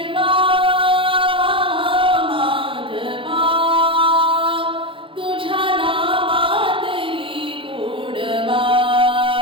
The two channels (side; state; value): left; late; 0.25 ms